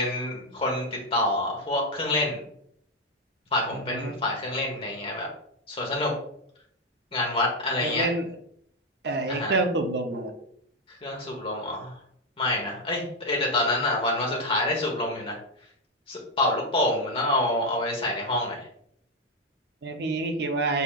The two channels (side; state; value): both; normal; correlation 0.03